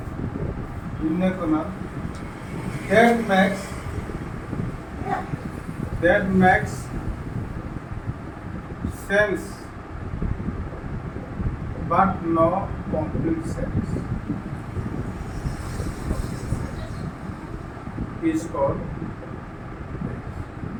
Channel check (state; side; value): identical; both; correlation 1.00